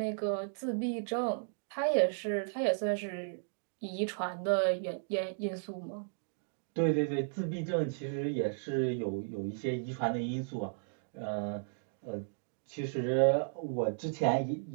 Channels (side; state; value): left; silent; digital silence